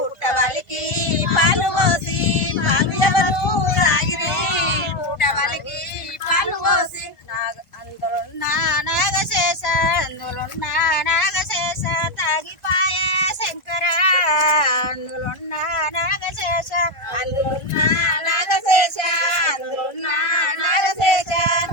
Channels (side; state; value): right; late; 1.4 ms